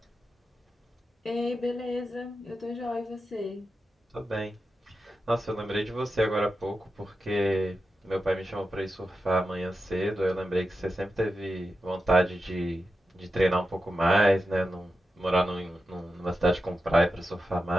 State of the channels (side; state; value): both; normal; correlation 0.90